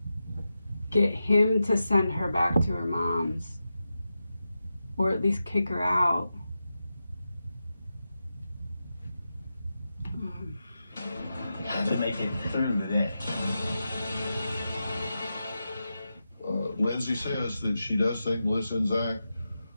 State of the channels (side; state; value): both; inverted; correlation -0.90